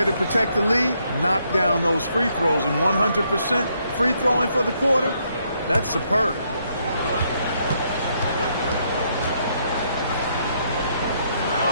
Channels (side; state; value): both; inverted; correlation -0.74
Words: to protect the lead, knock down those free throws, and 100% free throwing for the quarter, that's superb.